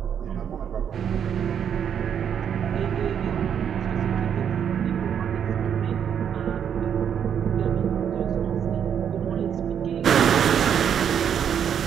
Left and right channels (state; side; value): quieter; left; 8.4 dB